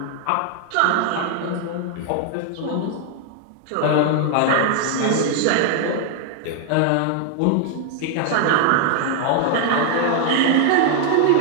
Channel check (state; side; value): different; both; correlation 0.00